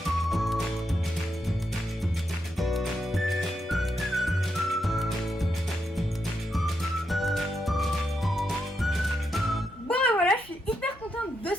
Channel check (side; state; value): both; normal; correlation 0.82